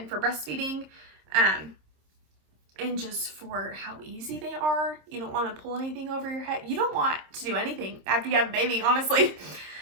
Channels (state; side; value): late; left; 26 ms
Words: for breastfeeding, and just for how easy they are. You don't want to pull anything over your head. You don't want to do anything after you have a baby, honestly.